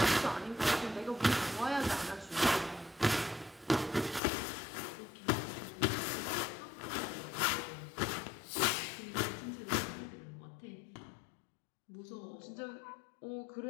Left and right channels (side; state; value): right; drops out; at 4.2 s